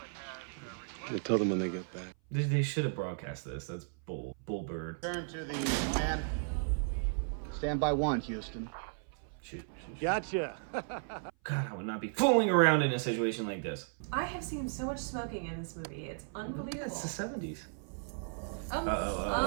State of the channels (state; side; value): silent; left; 54 dB below the other